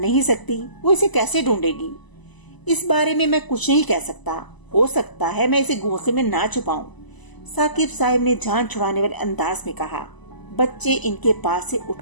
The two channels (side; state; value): right; late; 1.0 ms